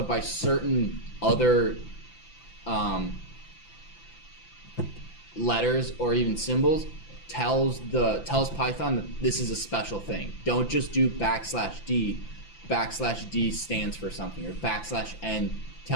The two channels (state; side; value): late; right; 5.9 ms